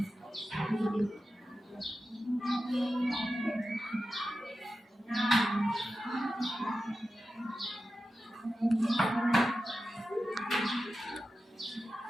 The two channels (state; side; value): normal; both; correlation 0.92